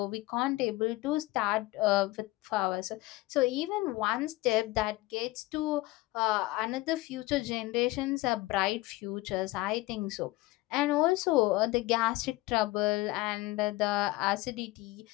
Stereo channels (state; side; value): quieter; right; 19.6 dB